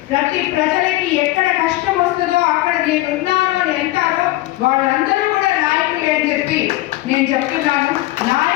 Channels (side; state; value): right; quieter; 17.8 dB